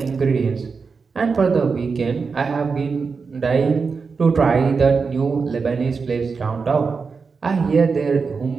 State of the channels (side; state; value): left; quieter; 5.0 dB